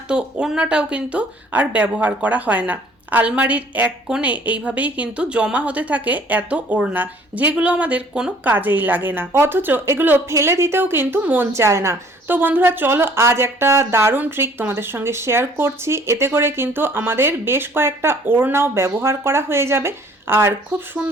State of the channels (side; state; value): both; normal; correlation 0.56